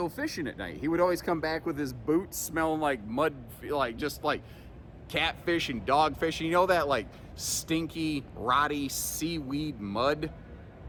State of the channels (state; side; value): identical; both; correlation 1.00